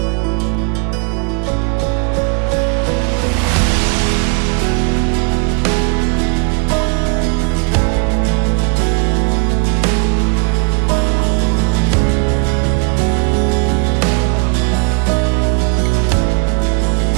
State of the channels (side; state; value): left; quieter; 35.0 dB